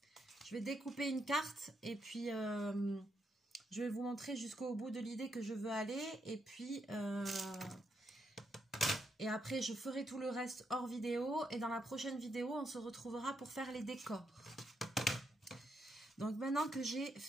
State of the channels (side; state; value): both; normal; correlation 0.80